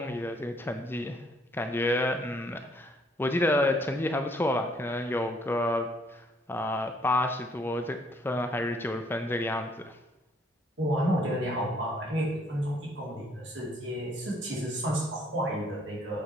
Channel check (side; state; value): both; normal; correlation 0.64